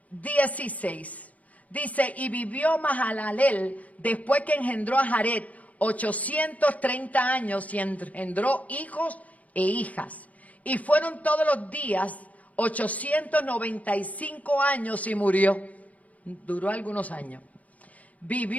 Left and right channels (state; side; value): late; right; 0.071 ms